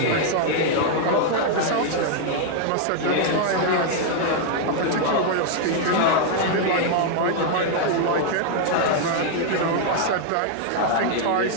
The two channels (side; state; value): both; different; correlation 0.00